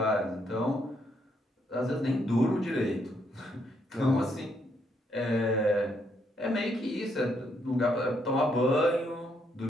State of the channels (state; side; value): normal; both; correlation 0.74